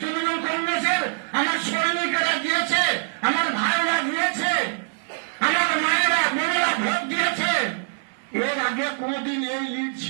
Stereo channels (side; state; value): left; silent; 63 dB below the other